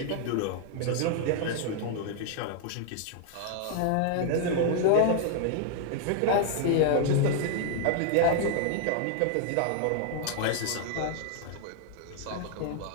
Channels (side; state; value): both; different; correlation 0.00